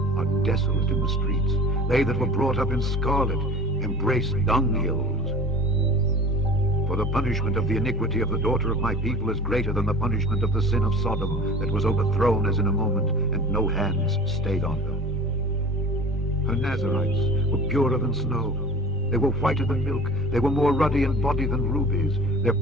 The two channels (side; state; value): both; normal; correlation 0.40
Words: are desolate in the streets. They that were brought up in scarlet embrace dunghills. For the punishment of the iniquity of the daughter of my people is greater than the punishment of the sin of Sodom, that was overthrown as in a moment, and no hands stayed on her. Her Nazarites were purer than snow. They were whiter than milk. They were more ruddy in body than rubies. Their